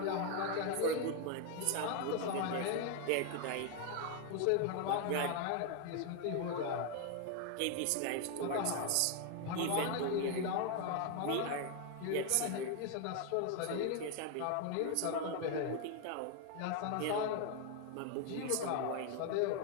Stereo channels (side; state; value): both; different; correlation 0.01